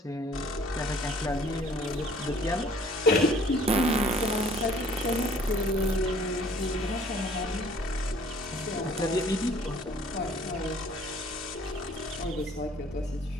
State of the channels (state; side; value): normal; both; correlation 0.55